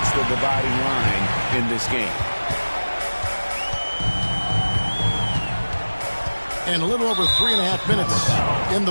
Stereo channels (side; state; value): both; inverted; correlation -1.00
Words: the dividing line in this game. And a little over 3.5 minutes in the